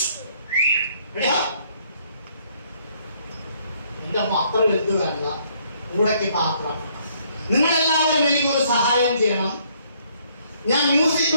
എന്റെ അത്ര വലുത് വേണ്ട. കൂടെക്ക് പാത്രം. നിങ്ങളെല്ലാവരും എനിക്കൊരു സഹായം ചെയ്യണം. ഞാൻ മ്യൂസിക്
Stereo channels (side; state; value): both; inverted; correlation -0.66